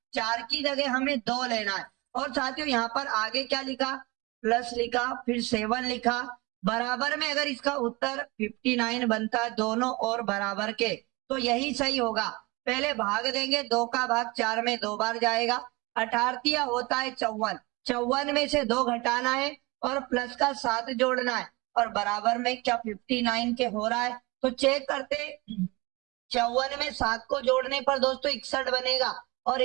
4 की जगह हमें 2 लेना है, और साथियों यहाँ पर आगे क्या लिखा, प्लस लिखा, फिर 7 लिखा, बराबर में अगर इसका उत्तर 59 बनता है दोनों और बराबर के, तो यही सही होगा। पहले भाग देंगे, 2 का भाग 4 में 2 बार जाएगा, 18 होता है 54, 54 में से 2 घटाना है और प्लस का 7 जोड़ना है, और बराबर में क्या 59 के हो रहा है। तो चेक करते, 54 में 7 को जोड़ने पर दोस्तों 61 बनेगा, और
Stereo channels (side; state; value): left; quieter; 24.4 dB